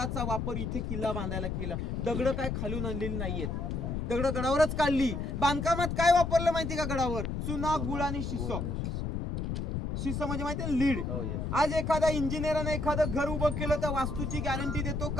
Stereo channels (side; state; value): left; noise; rumble, 2 dB below the sound